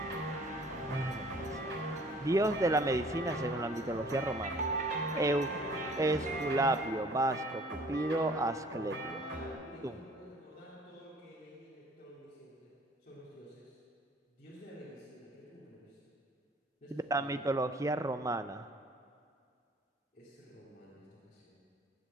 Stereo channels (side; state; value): both; normal; correlation 0.53